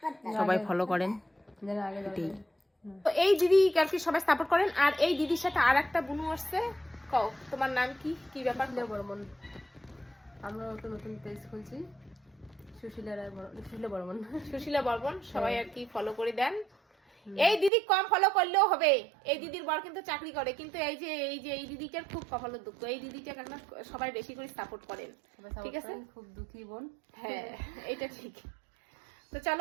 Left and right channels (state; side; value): drops out; left; at 17.7 s